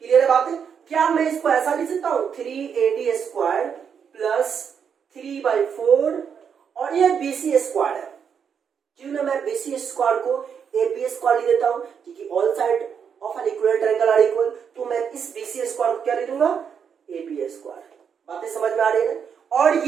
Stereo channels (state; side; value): quieter; left; 7.2 dB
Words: क्लियर है बात है? क्या मैं इसको ऐसा लिख सकता हूं, 3AD स्क्वायर प्लस 3/4 और ये बीसी स्क्वायर है। क्यों ना मैं बीसी स्क्वायर को एबी स्क्वायर लिख देता हूं, क्योंकि all side of an equal triangle are equal. तो मैं इस बीसी स्क्वायर को क्या लिख दूंगा, एबी स्क्वायर। बातें समझ में आ रही है? और